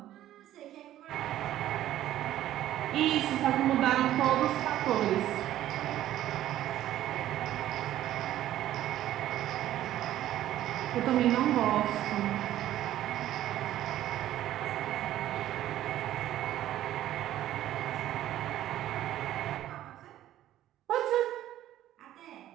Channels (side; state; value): left; quieter; 13.1 dB